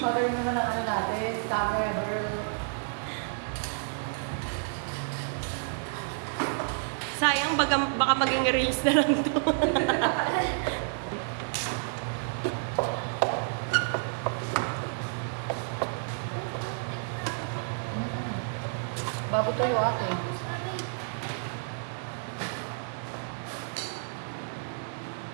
Naman ang ano natin. Camera girl. Sayang, baka maging reels na lang to. Bago tuyo ate.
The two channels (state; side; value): silent; left; 58 dB below the other